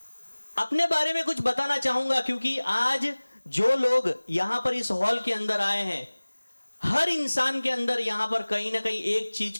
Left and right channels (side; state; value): both; inverted; correlation -1.00